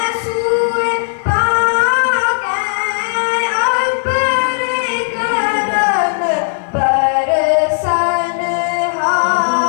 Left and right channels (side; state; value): right; silent; digital silence